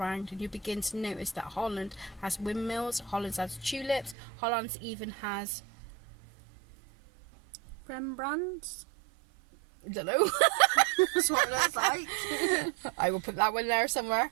and you begin to notice that Holland has windmills, Holland has tulips, Holland even has Rembrandts? I don't know. That's what it looks like. I will put that one there somewhere.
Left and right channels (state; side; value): drops out; left; at 4.2 s